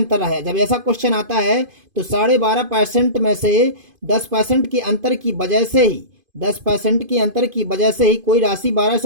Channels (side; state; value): left; late; 2.5 ms